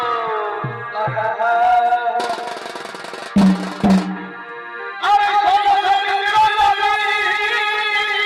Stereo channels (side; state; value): both; identical; correlation 1.00